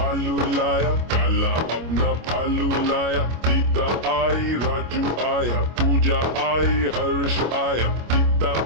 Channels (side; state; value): left; late; 25 ms